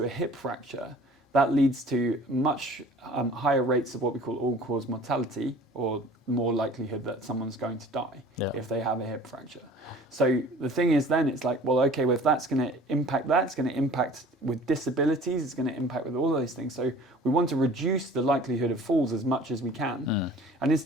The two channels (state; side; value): normal; both; correlation 0.47